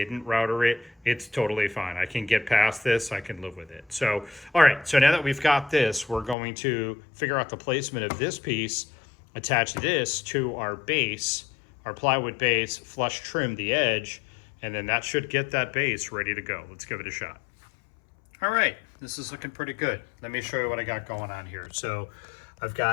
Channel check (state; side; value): drops out; right; at 6.4 s